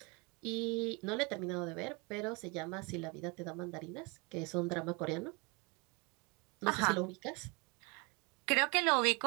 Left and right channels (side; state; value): left; quieter; 29.9 dB